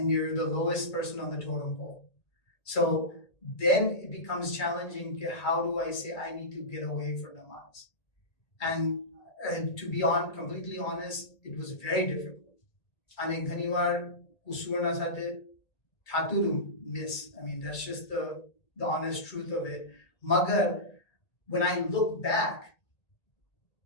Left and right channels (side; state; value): right; late; 2.3 ms